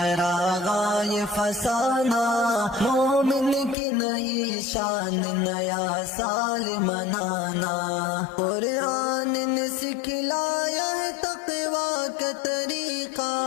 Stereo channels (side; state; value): right; drops out; at 3.8 s